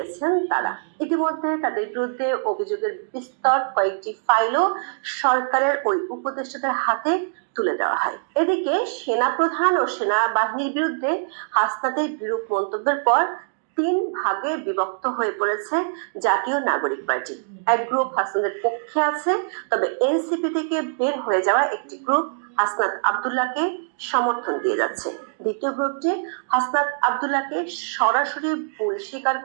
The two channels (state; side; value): silent; left; digital silence